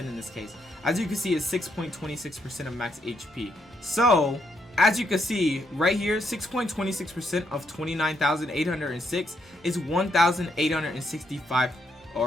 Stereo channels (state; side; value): normal; both; correlation 0.76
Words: in this case. As you can see, it's 6.26% of max HP. So as you can see right here, 6.26% of 29,806 is 1,865,